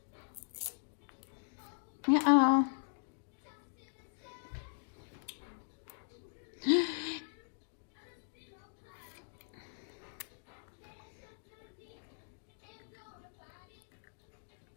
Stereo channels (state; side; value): silent; right; digital silence